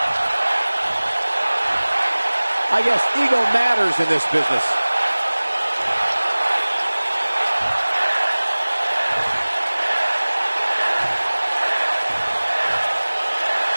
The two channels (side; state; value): both; inverted; correlation -1.00